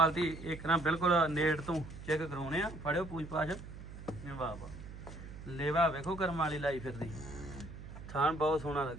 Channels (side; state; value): right; noise; hum, 13 dB below the sound